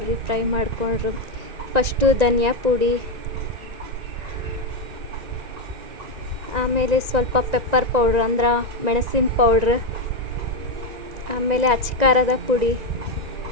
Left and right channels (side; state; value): left; late; 1.9 ms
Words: ಫ್ರೈ ಮಾಡ್ಕೊಂಡ್ರು. ಫಸ್ಟು ಧನಿಯಾ ಪುಡಿ, ಆಮೇಲೆ ಸ್ವಲ್ಪ ಪೆಪ್ಪರ್ ಪೌಡ್ರ್ ಅಂದ್ರೆ ಮೆಣಸಿನ ಪೌಡ್ರ್, ಆಮೇಲೆ ಅಚ್ಕಾರದ ಪುಡಿ,